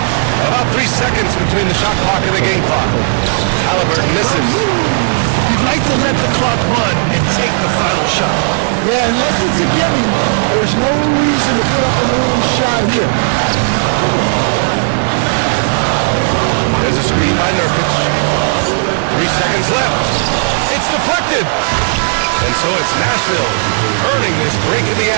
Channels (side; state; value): left; silent; digital silence